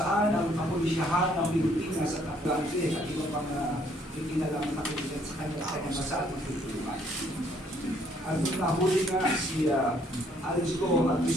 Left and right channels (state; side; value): normal; both; correlation 0.65